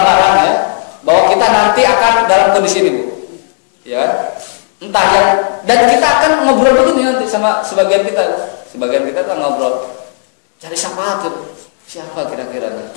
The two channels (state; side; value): silent; right; digital silence